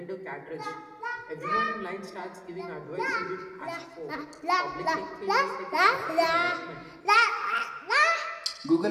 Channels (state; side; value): identical; both; correlation 1.00